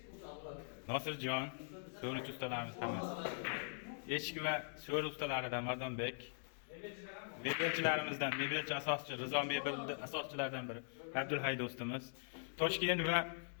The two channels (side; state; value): right; silent; digital silence